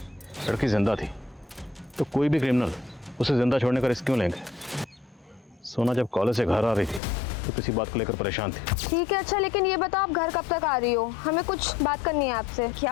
लड़की जिंदा थी, तो कोई भी क्रिमिनल उसे जिंदा छोड़ने का रिस्क क्यों लेंगे? सोना जब कॉलेज से घर आ रही थी तो किसी बात को लेकर परेशान थी। ठीक है, अच्छा लेकिन ये बताओ आप घर कब तक आ रही हो? हमें कुछ बात करनी है आपसे।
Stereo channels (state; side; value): drops out; right; at 7.0 s